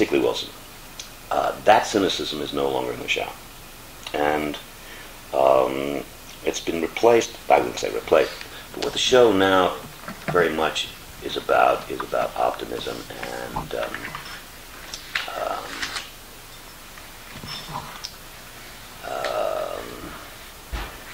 Wilson. That cynicism is no longer in the show. And it's been replaced, I wouldn't say replaced, but what the show now very much is about optimism and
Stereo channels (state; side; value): identical; both; correlation 1.00